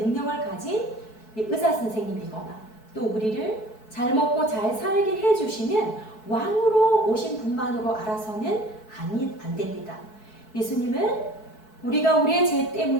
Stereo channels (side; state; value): right; late; 4.6 ms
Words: 가진 의사 선생님이거나 또 우리를 잘 먹고 잘 살게 해주시는 왕으로 오신 분만으로 알아서는 안 됩니다. 예수님은 우리가 우리의 죄